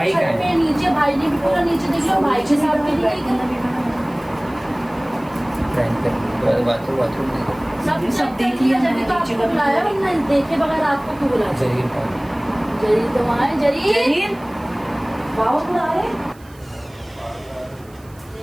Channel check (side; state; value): right; noise; hiss, 28 dB below the sound